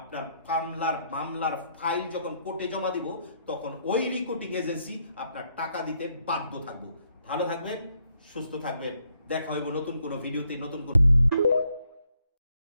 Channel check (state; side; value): inverted; both; correlation -0.73